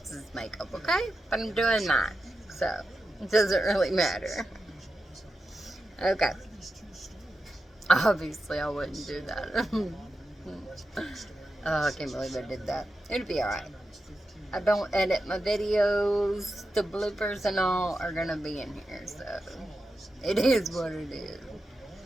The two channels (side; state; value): both; normal; correlation 0.89